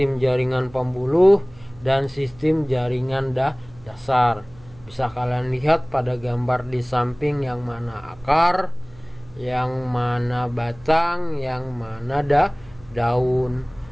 jaringan pembuluh, dan sistem jaringan dasar. Bisa kalian lihat pada gambar di samping yang mana akar, yang mana batang, yang mana daun,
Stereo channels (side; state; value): right; noise; hum, 24 dB below the sound